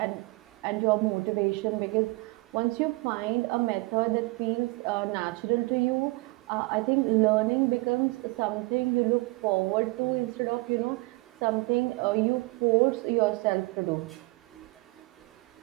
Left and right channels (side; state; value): left; quieter; 24.7 dB